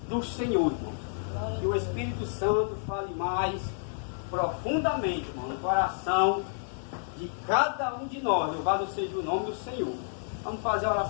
do Senhor, irmãos. Que o Espírito Santo fale mais profundamente, irmão, no coração de cada um de nós. Louvado seja o nome do Senhor. Vamos fazer a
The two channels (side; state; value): right; silent; digital silence